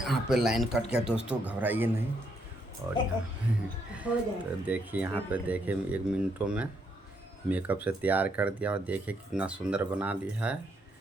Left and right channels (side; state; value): both; normal; correlation 0.74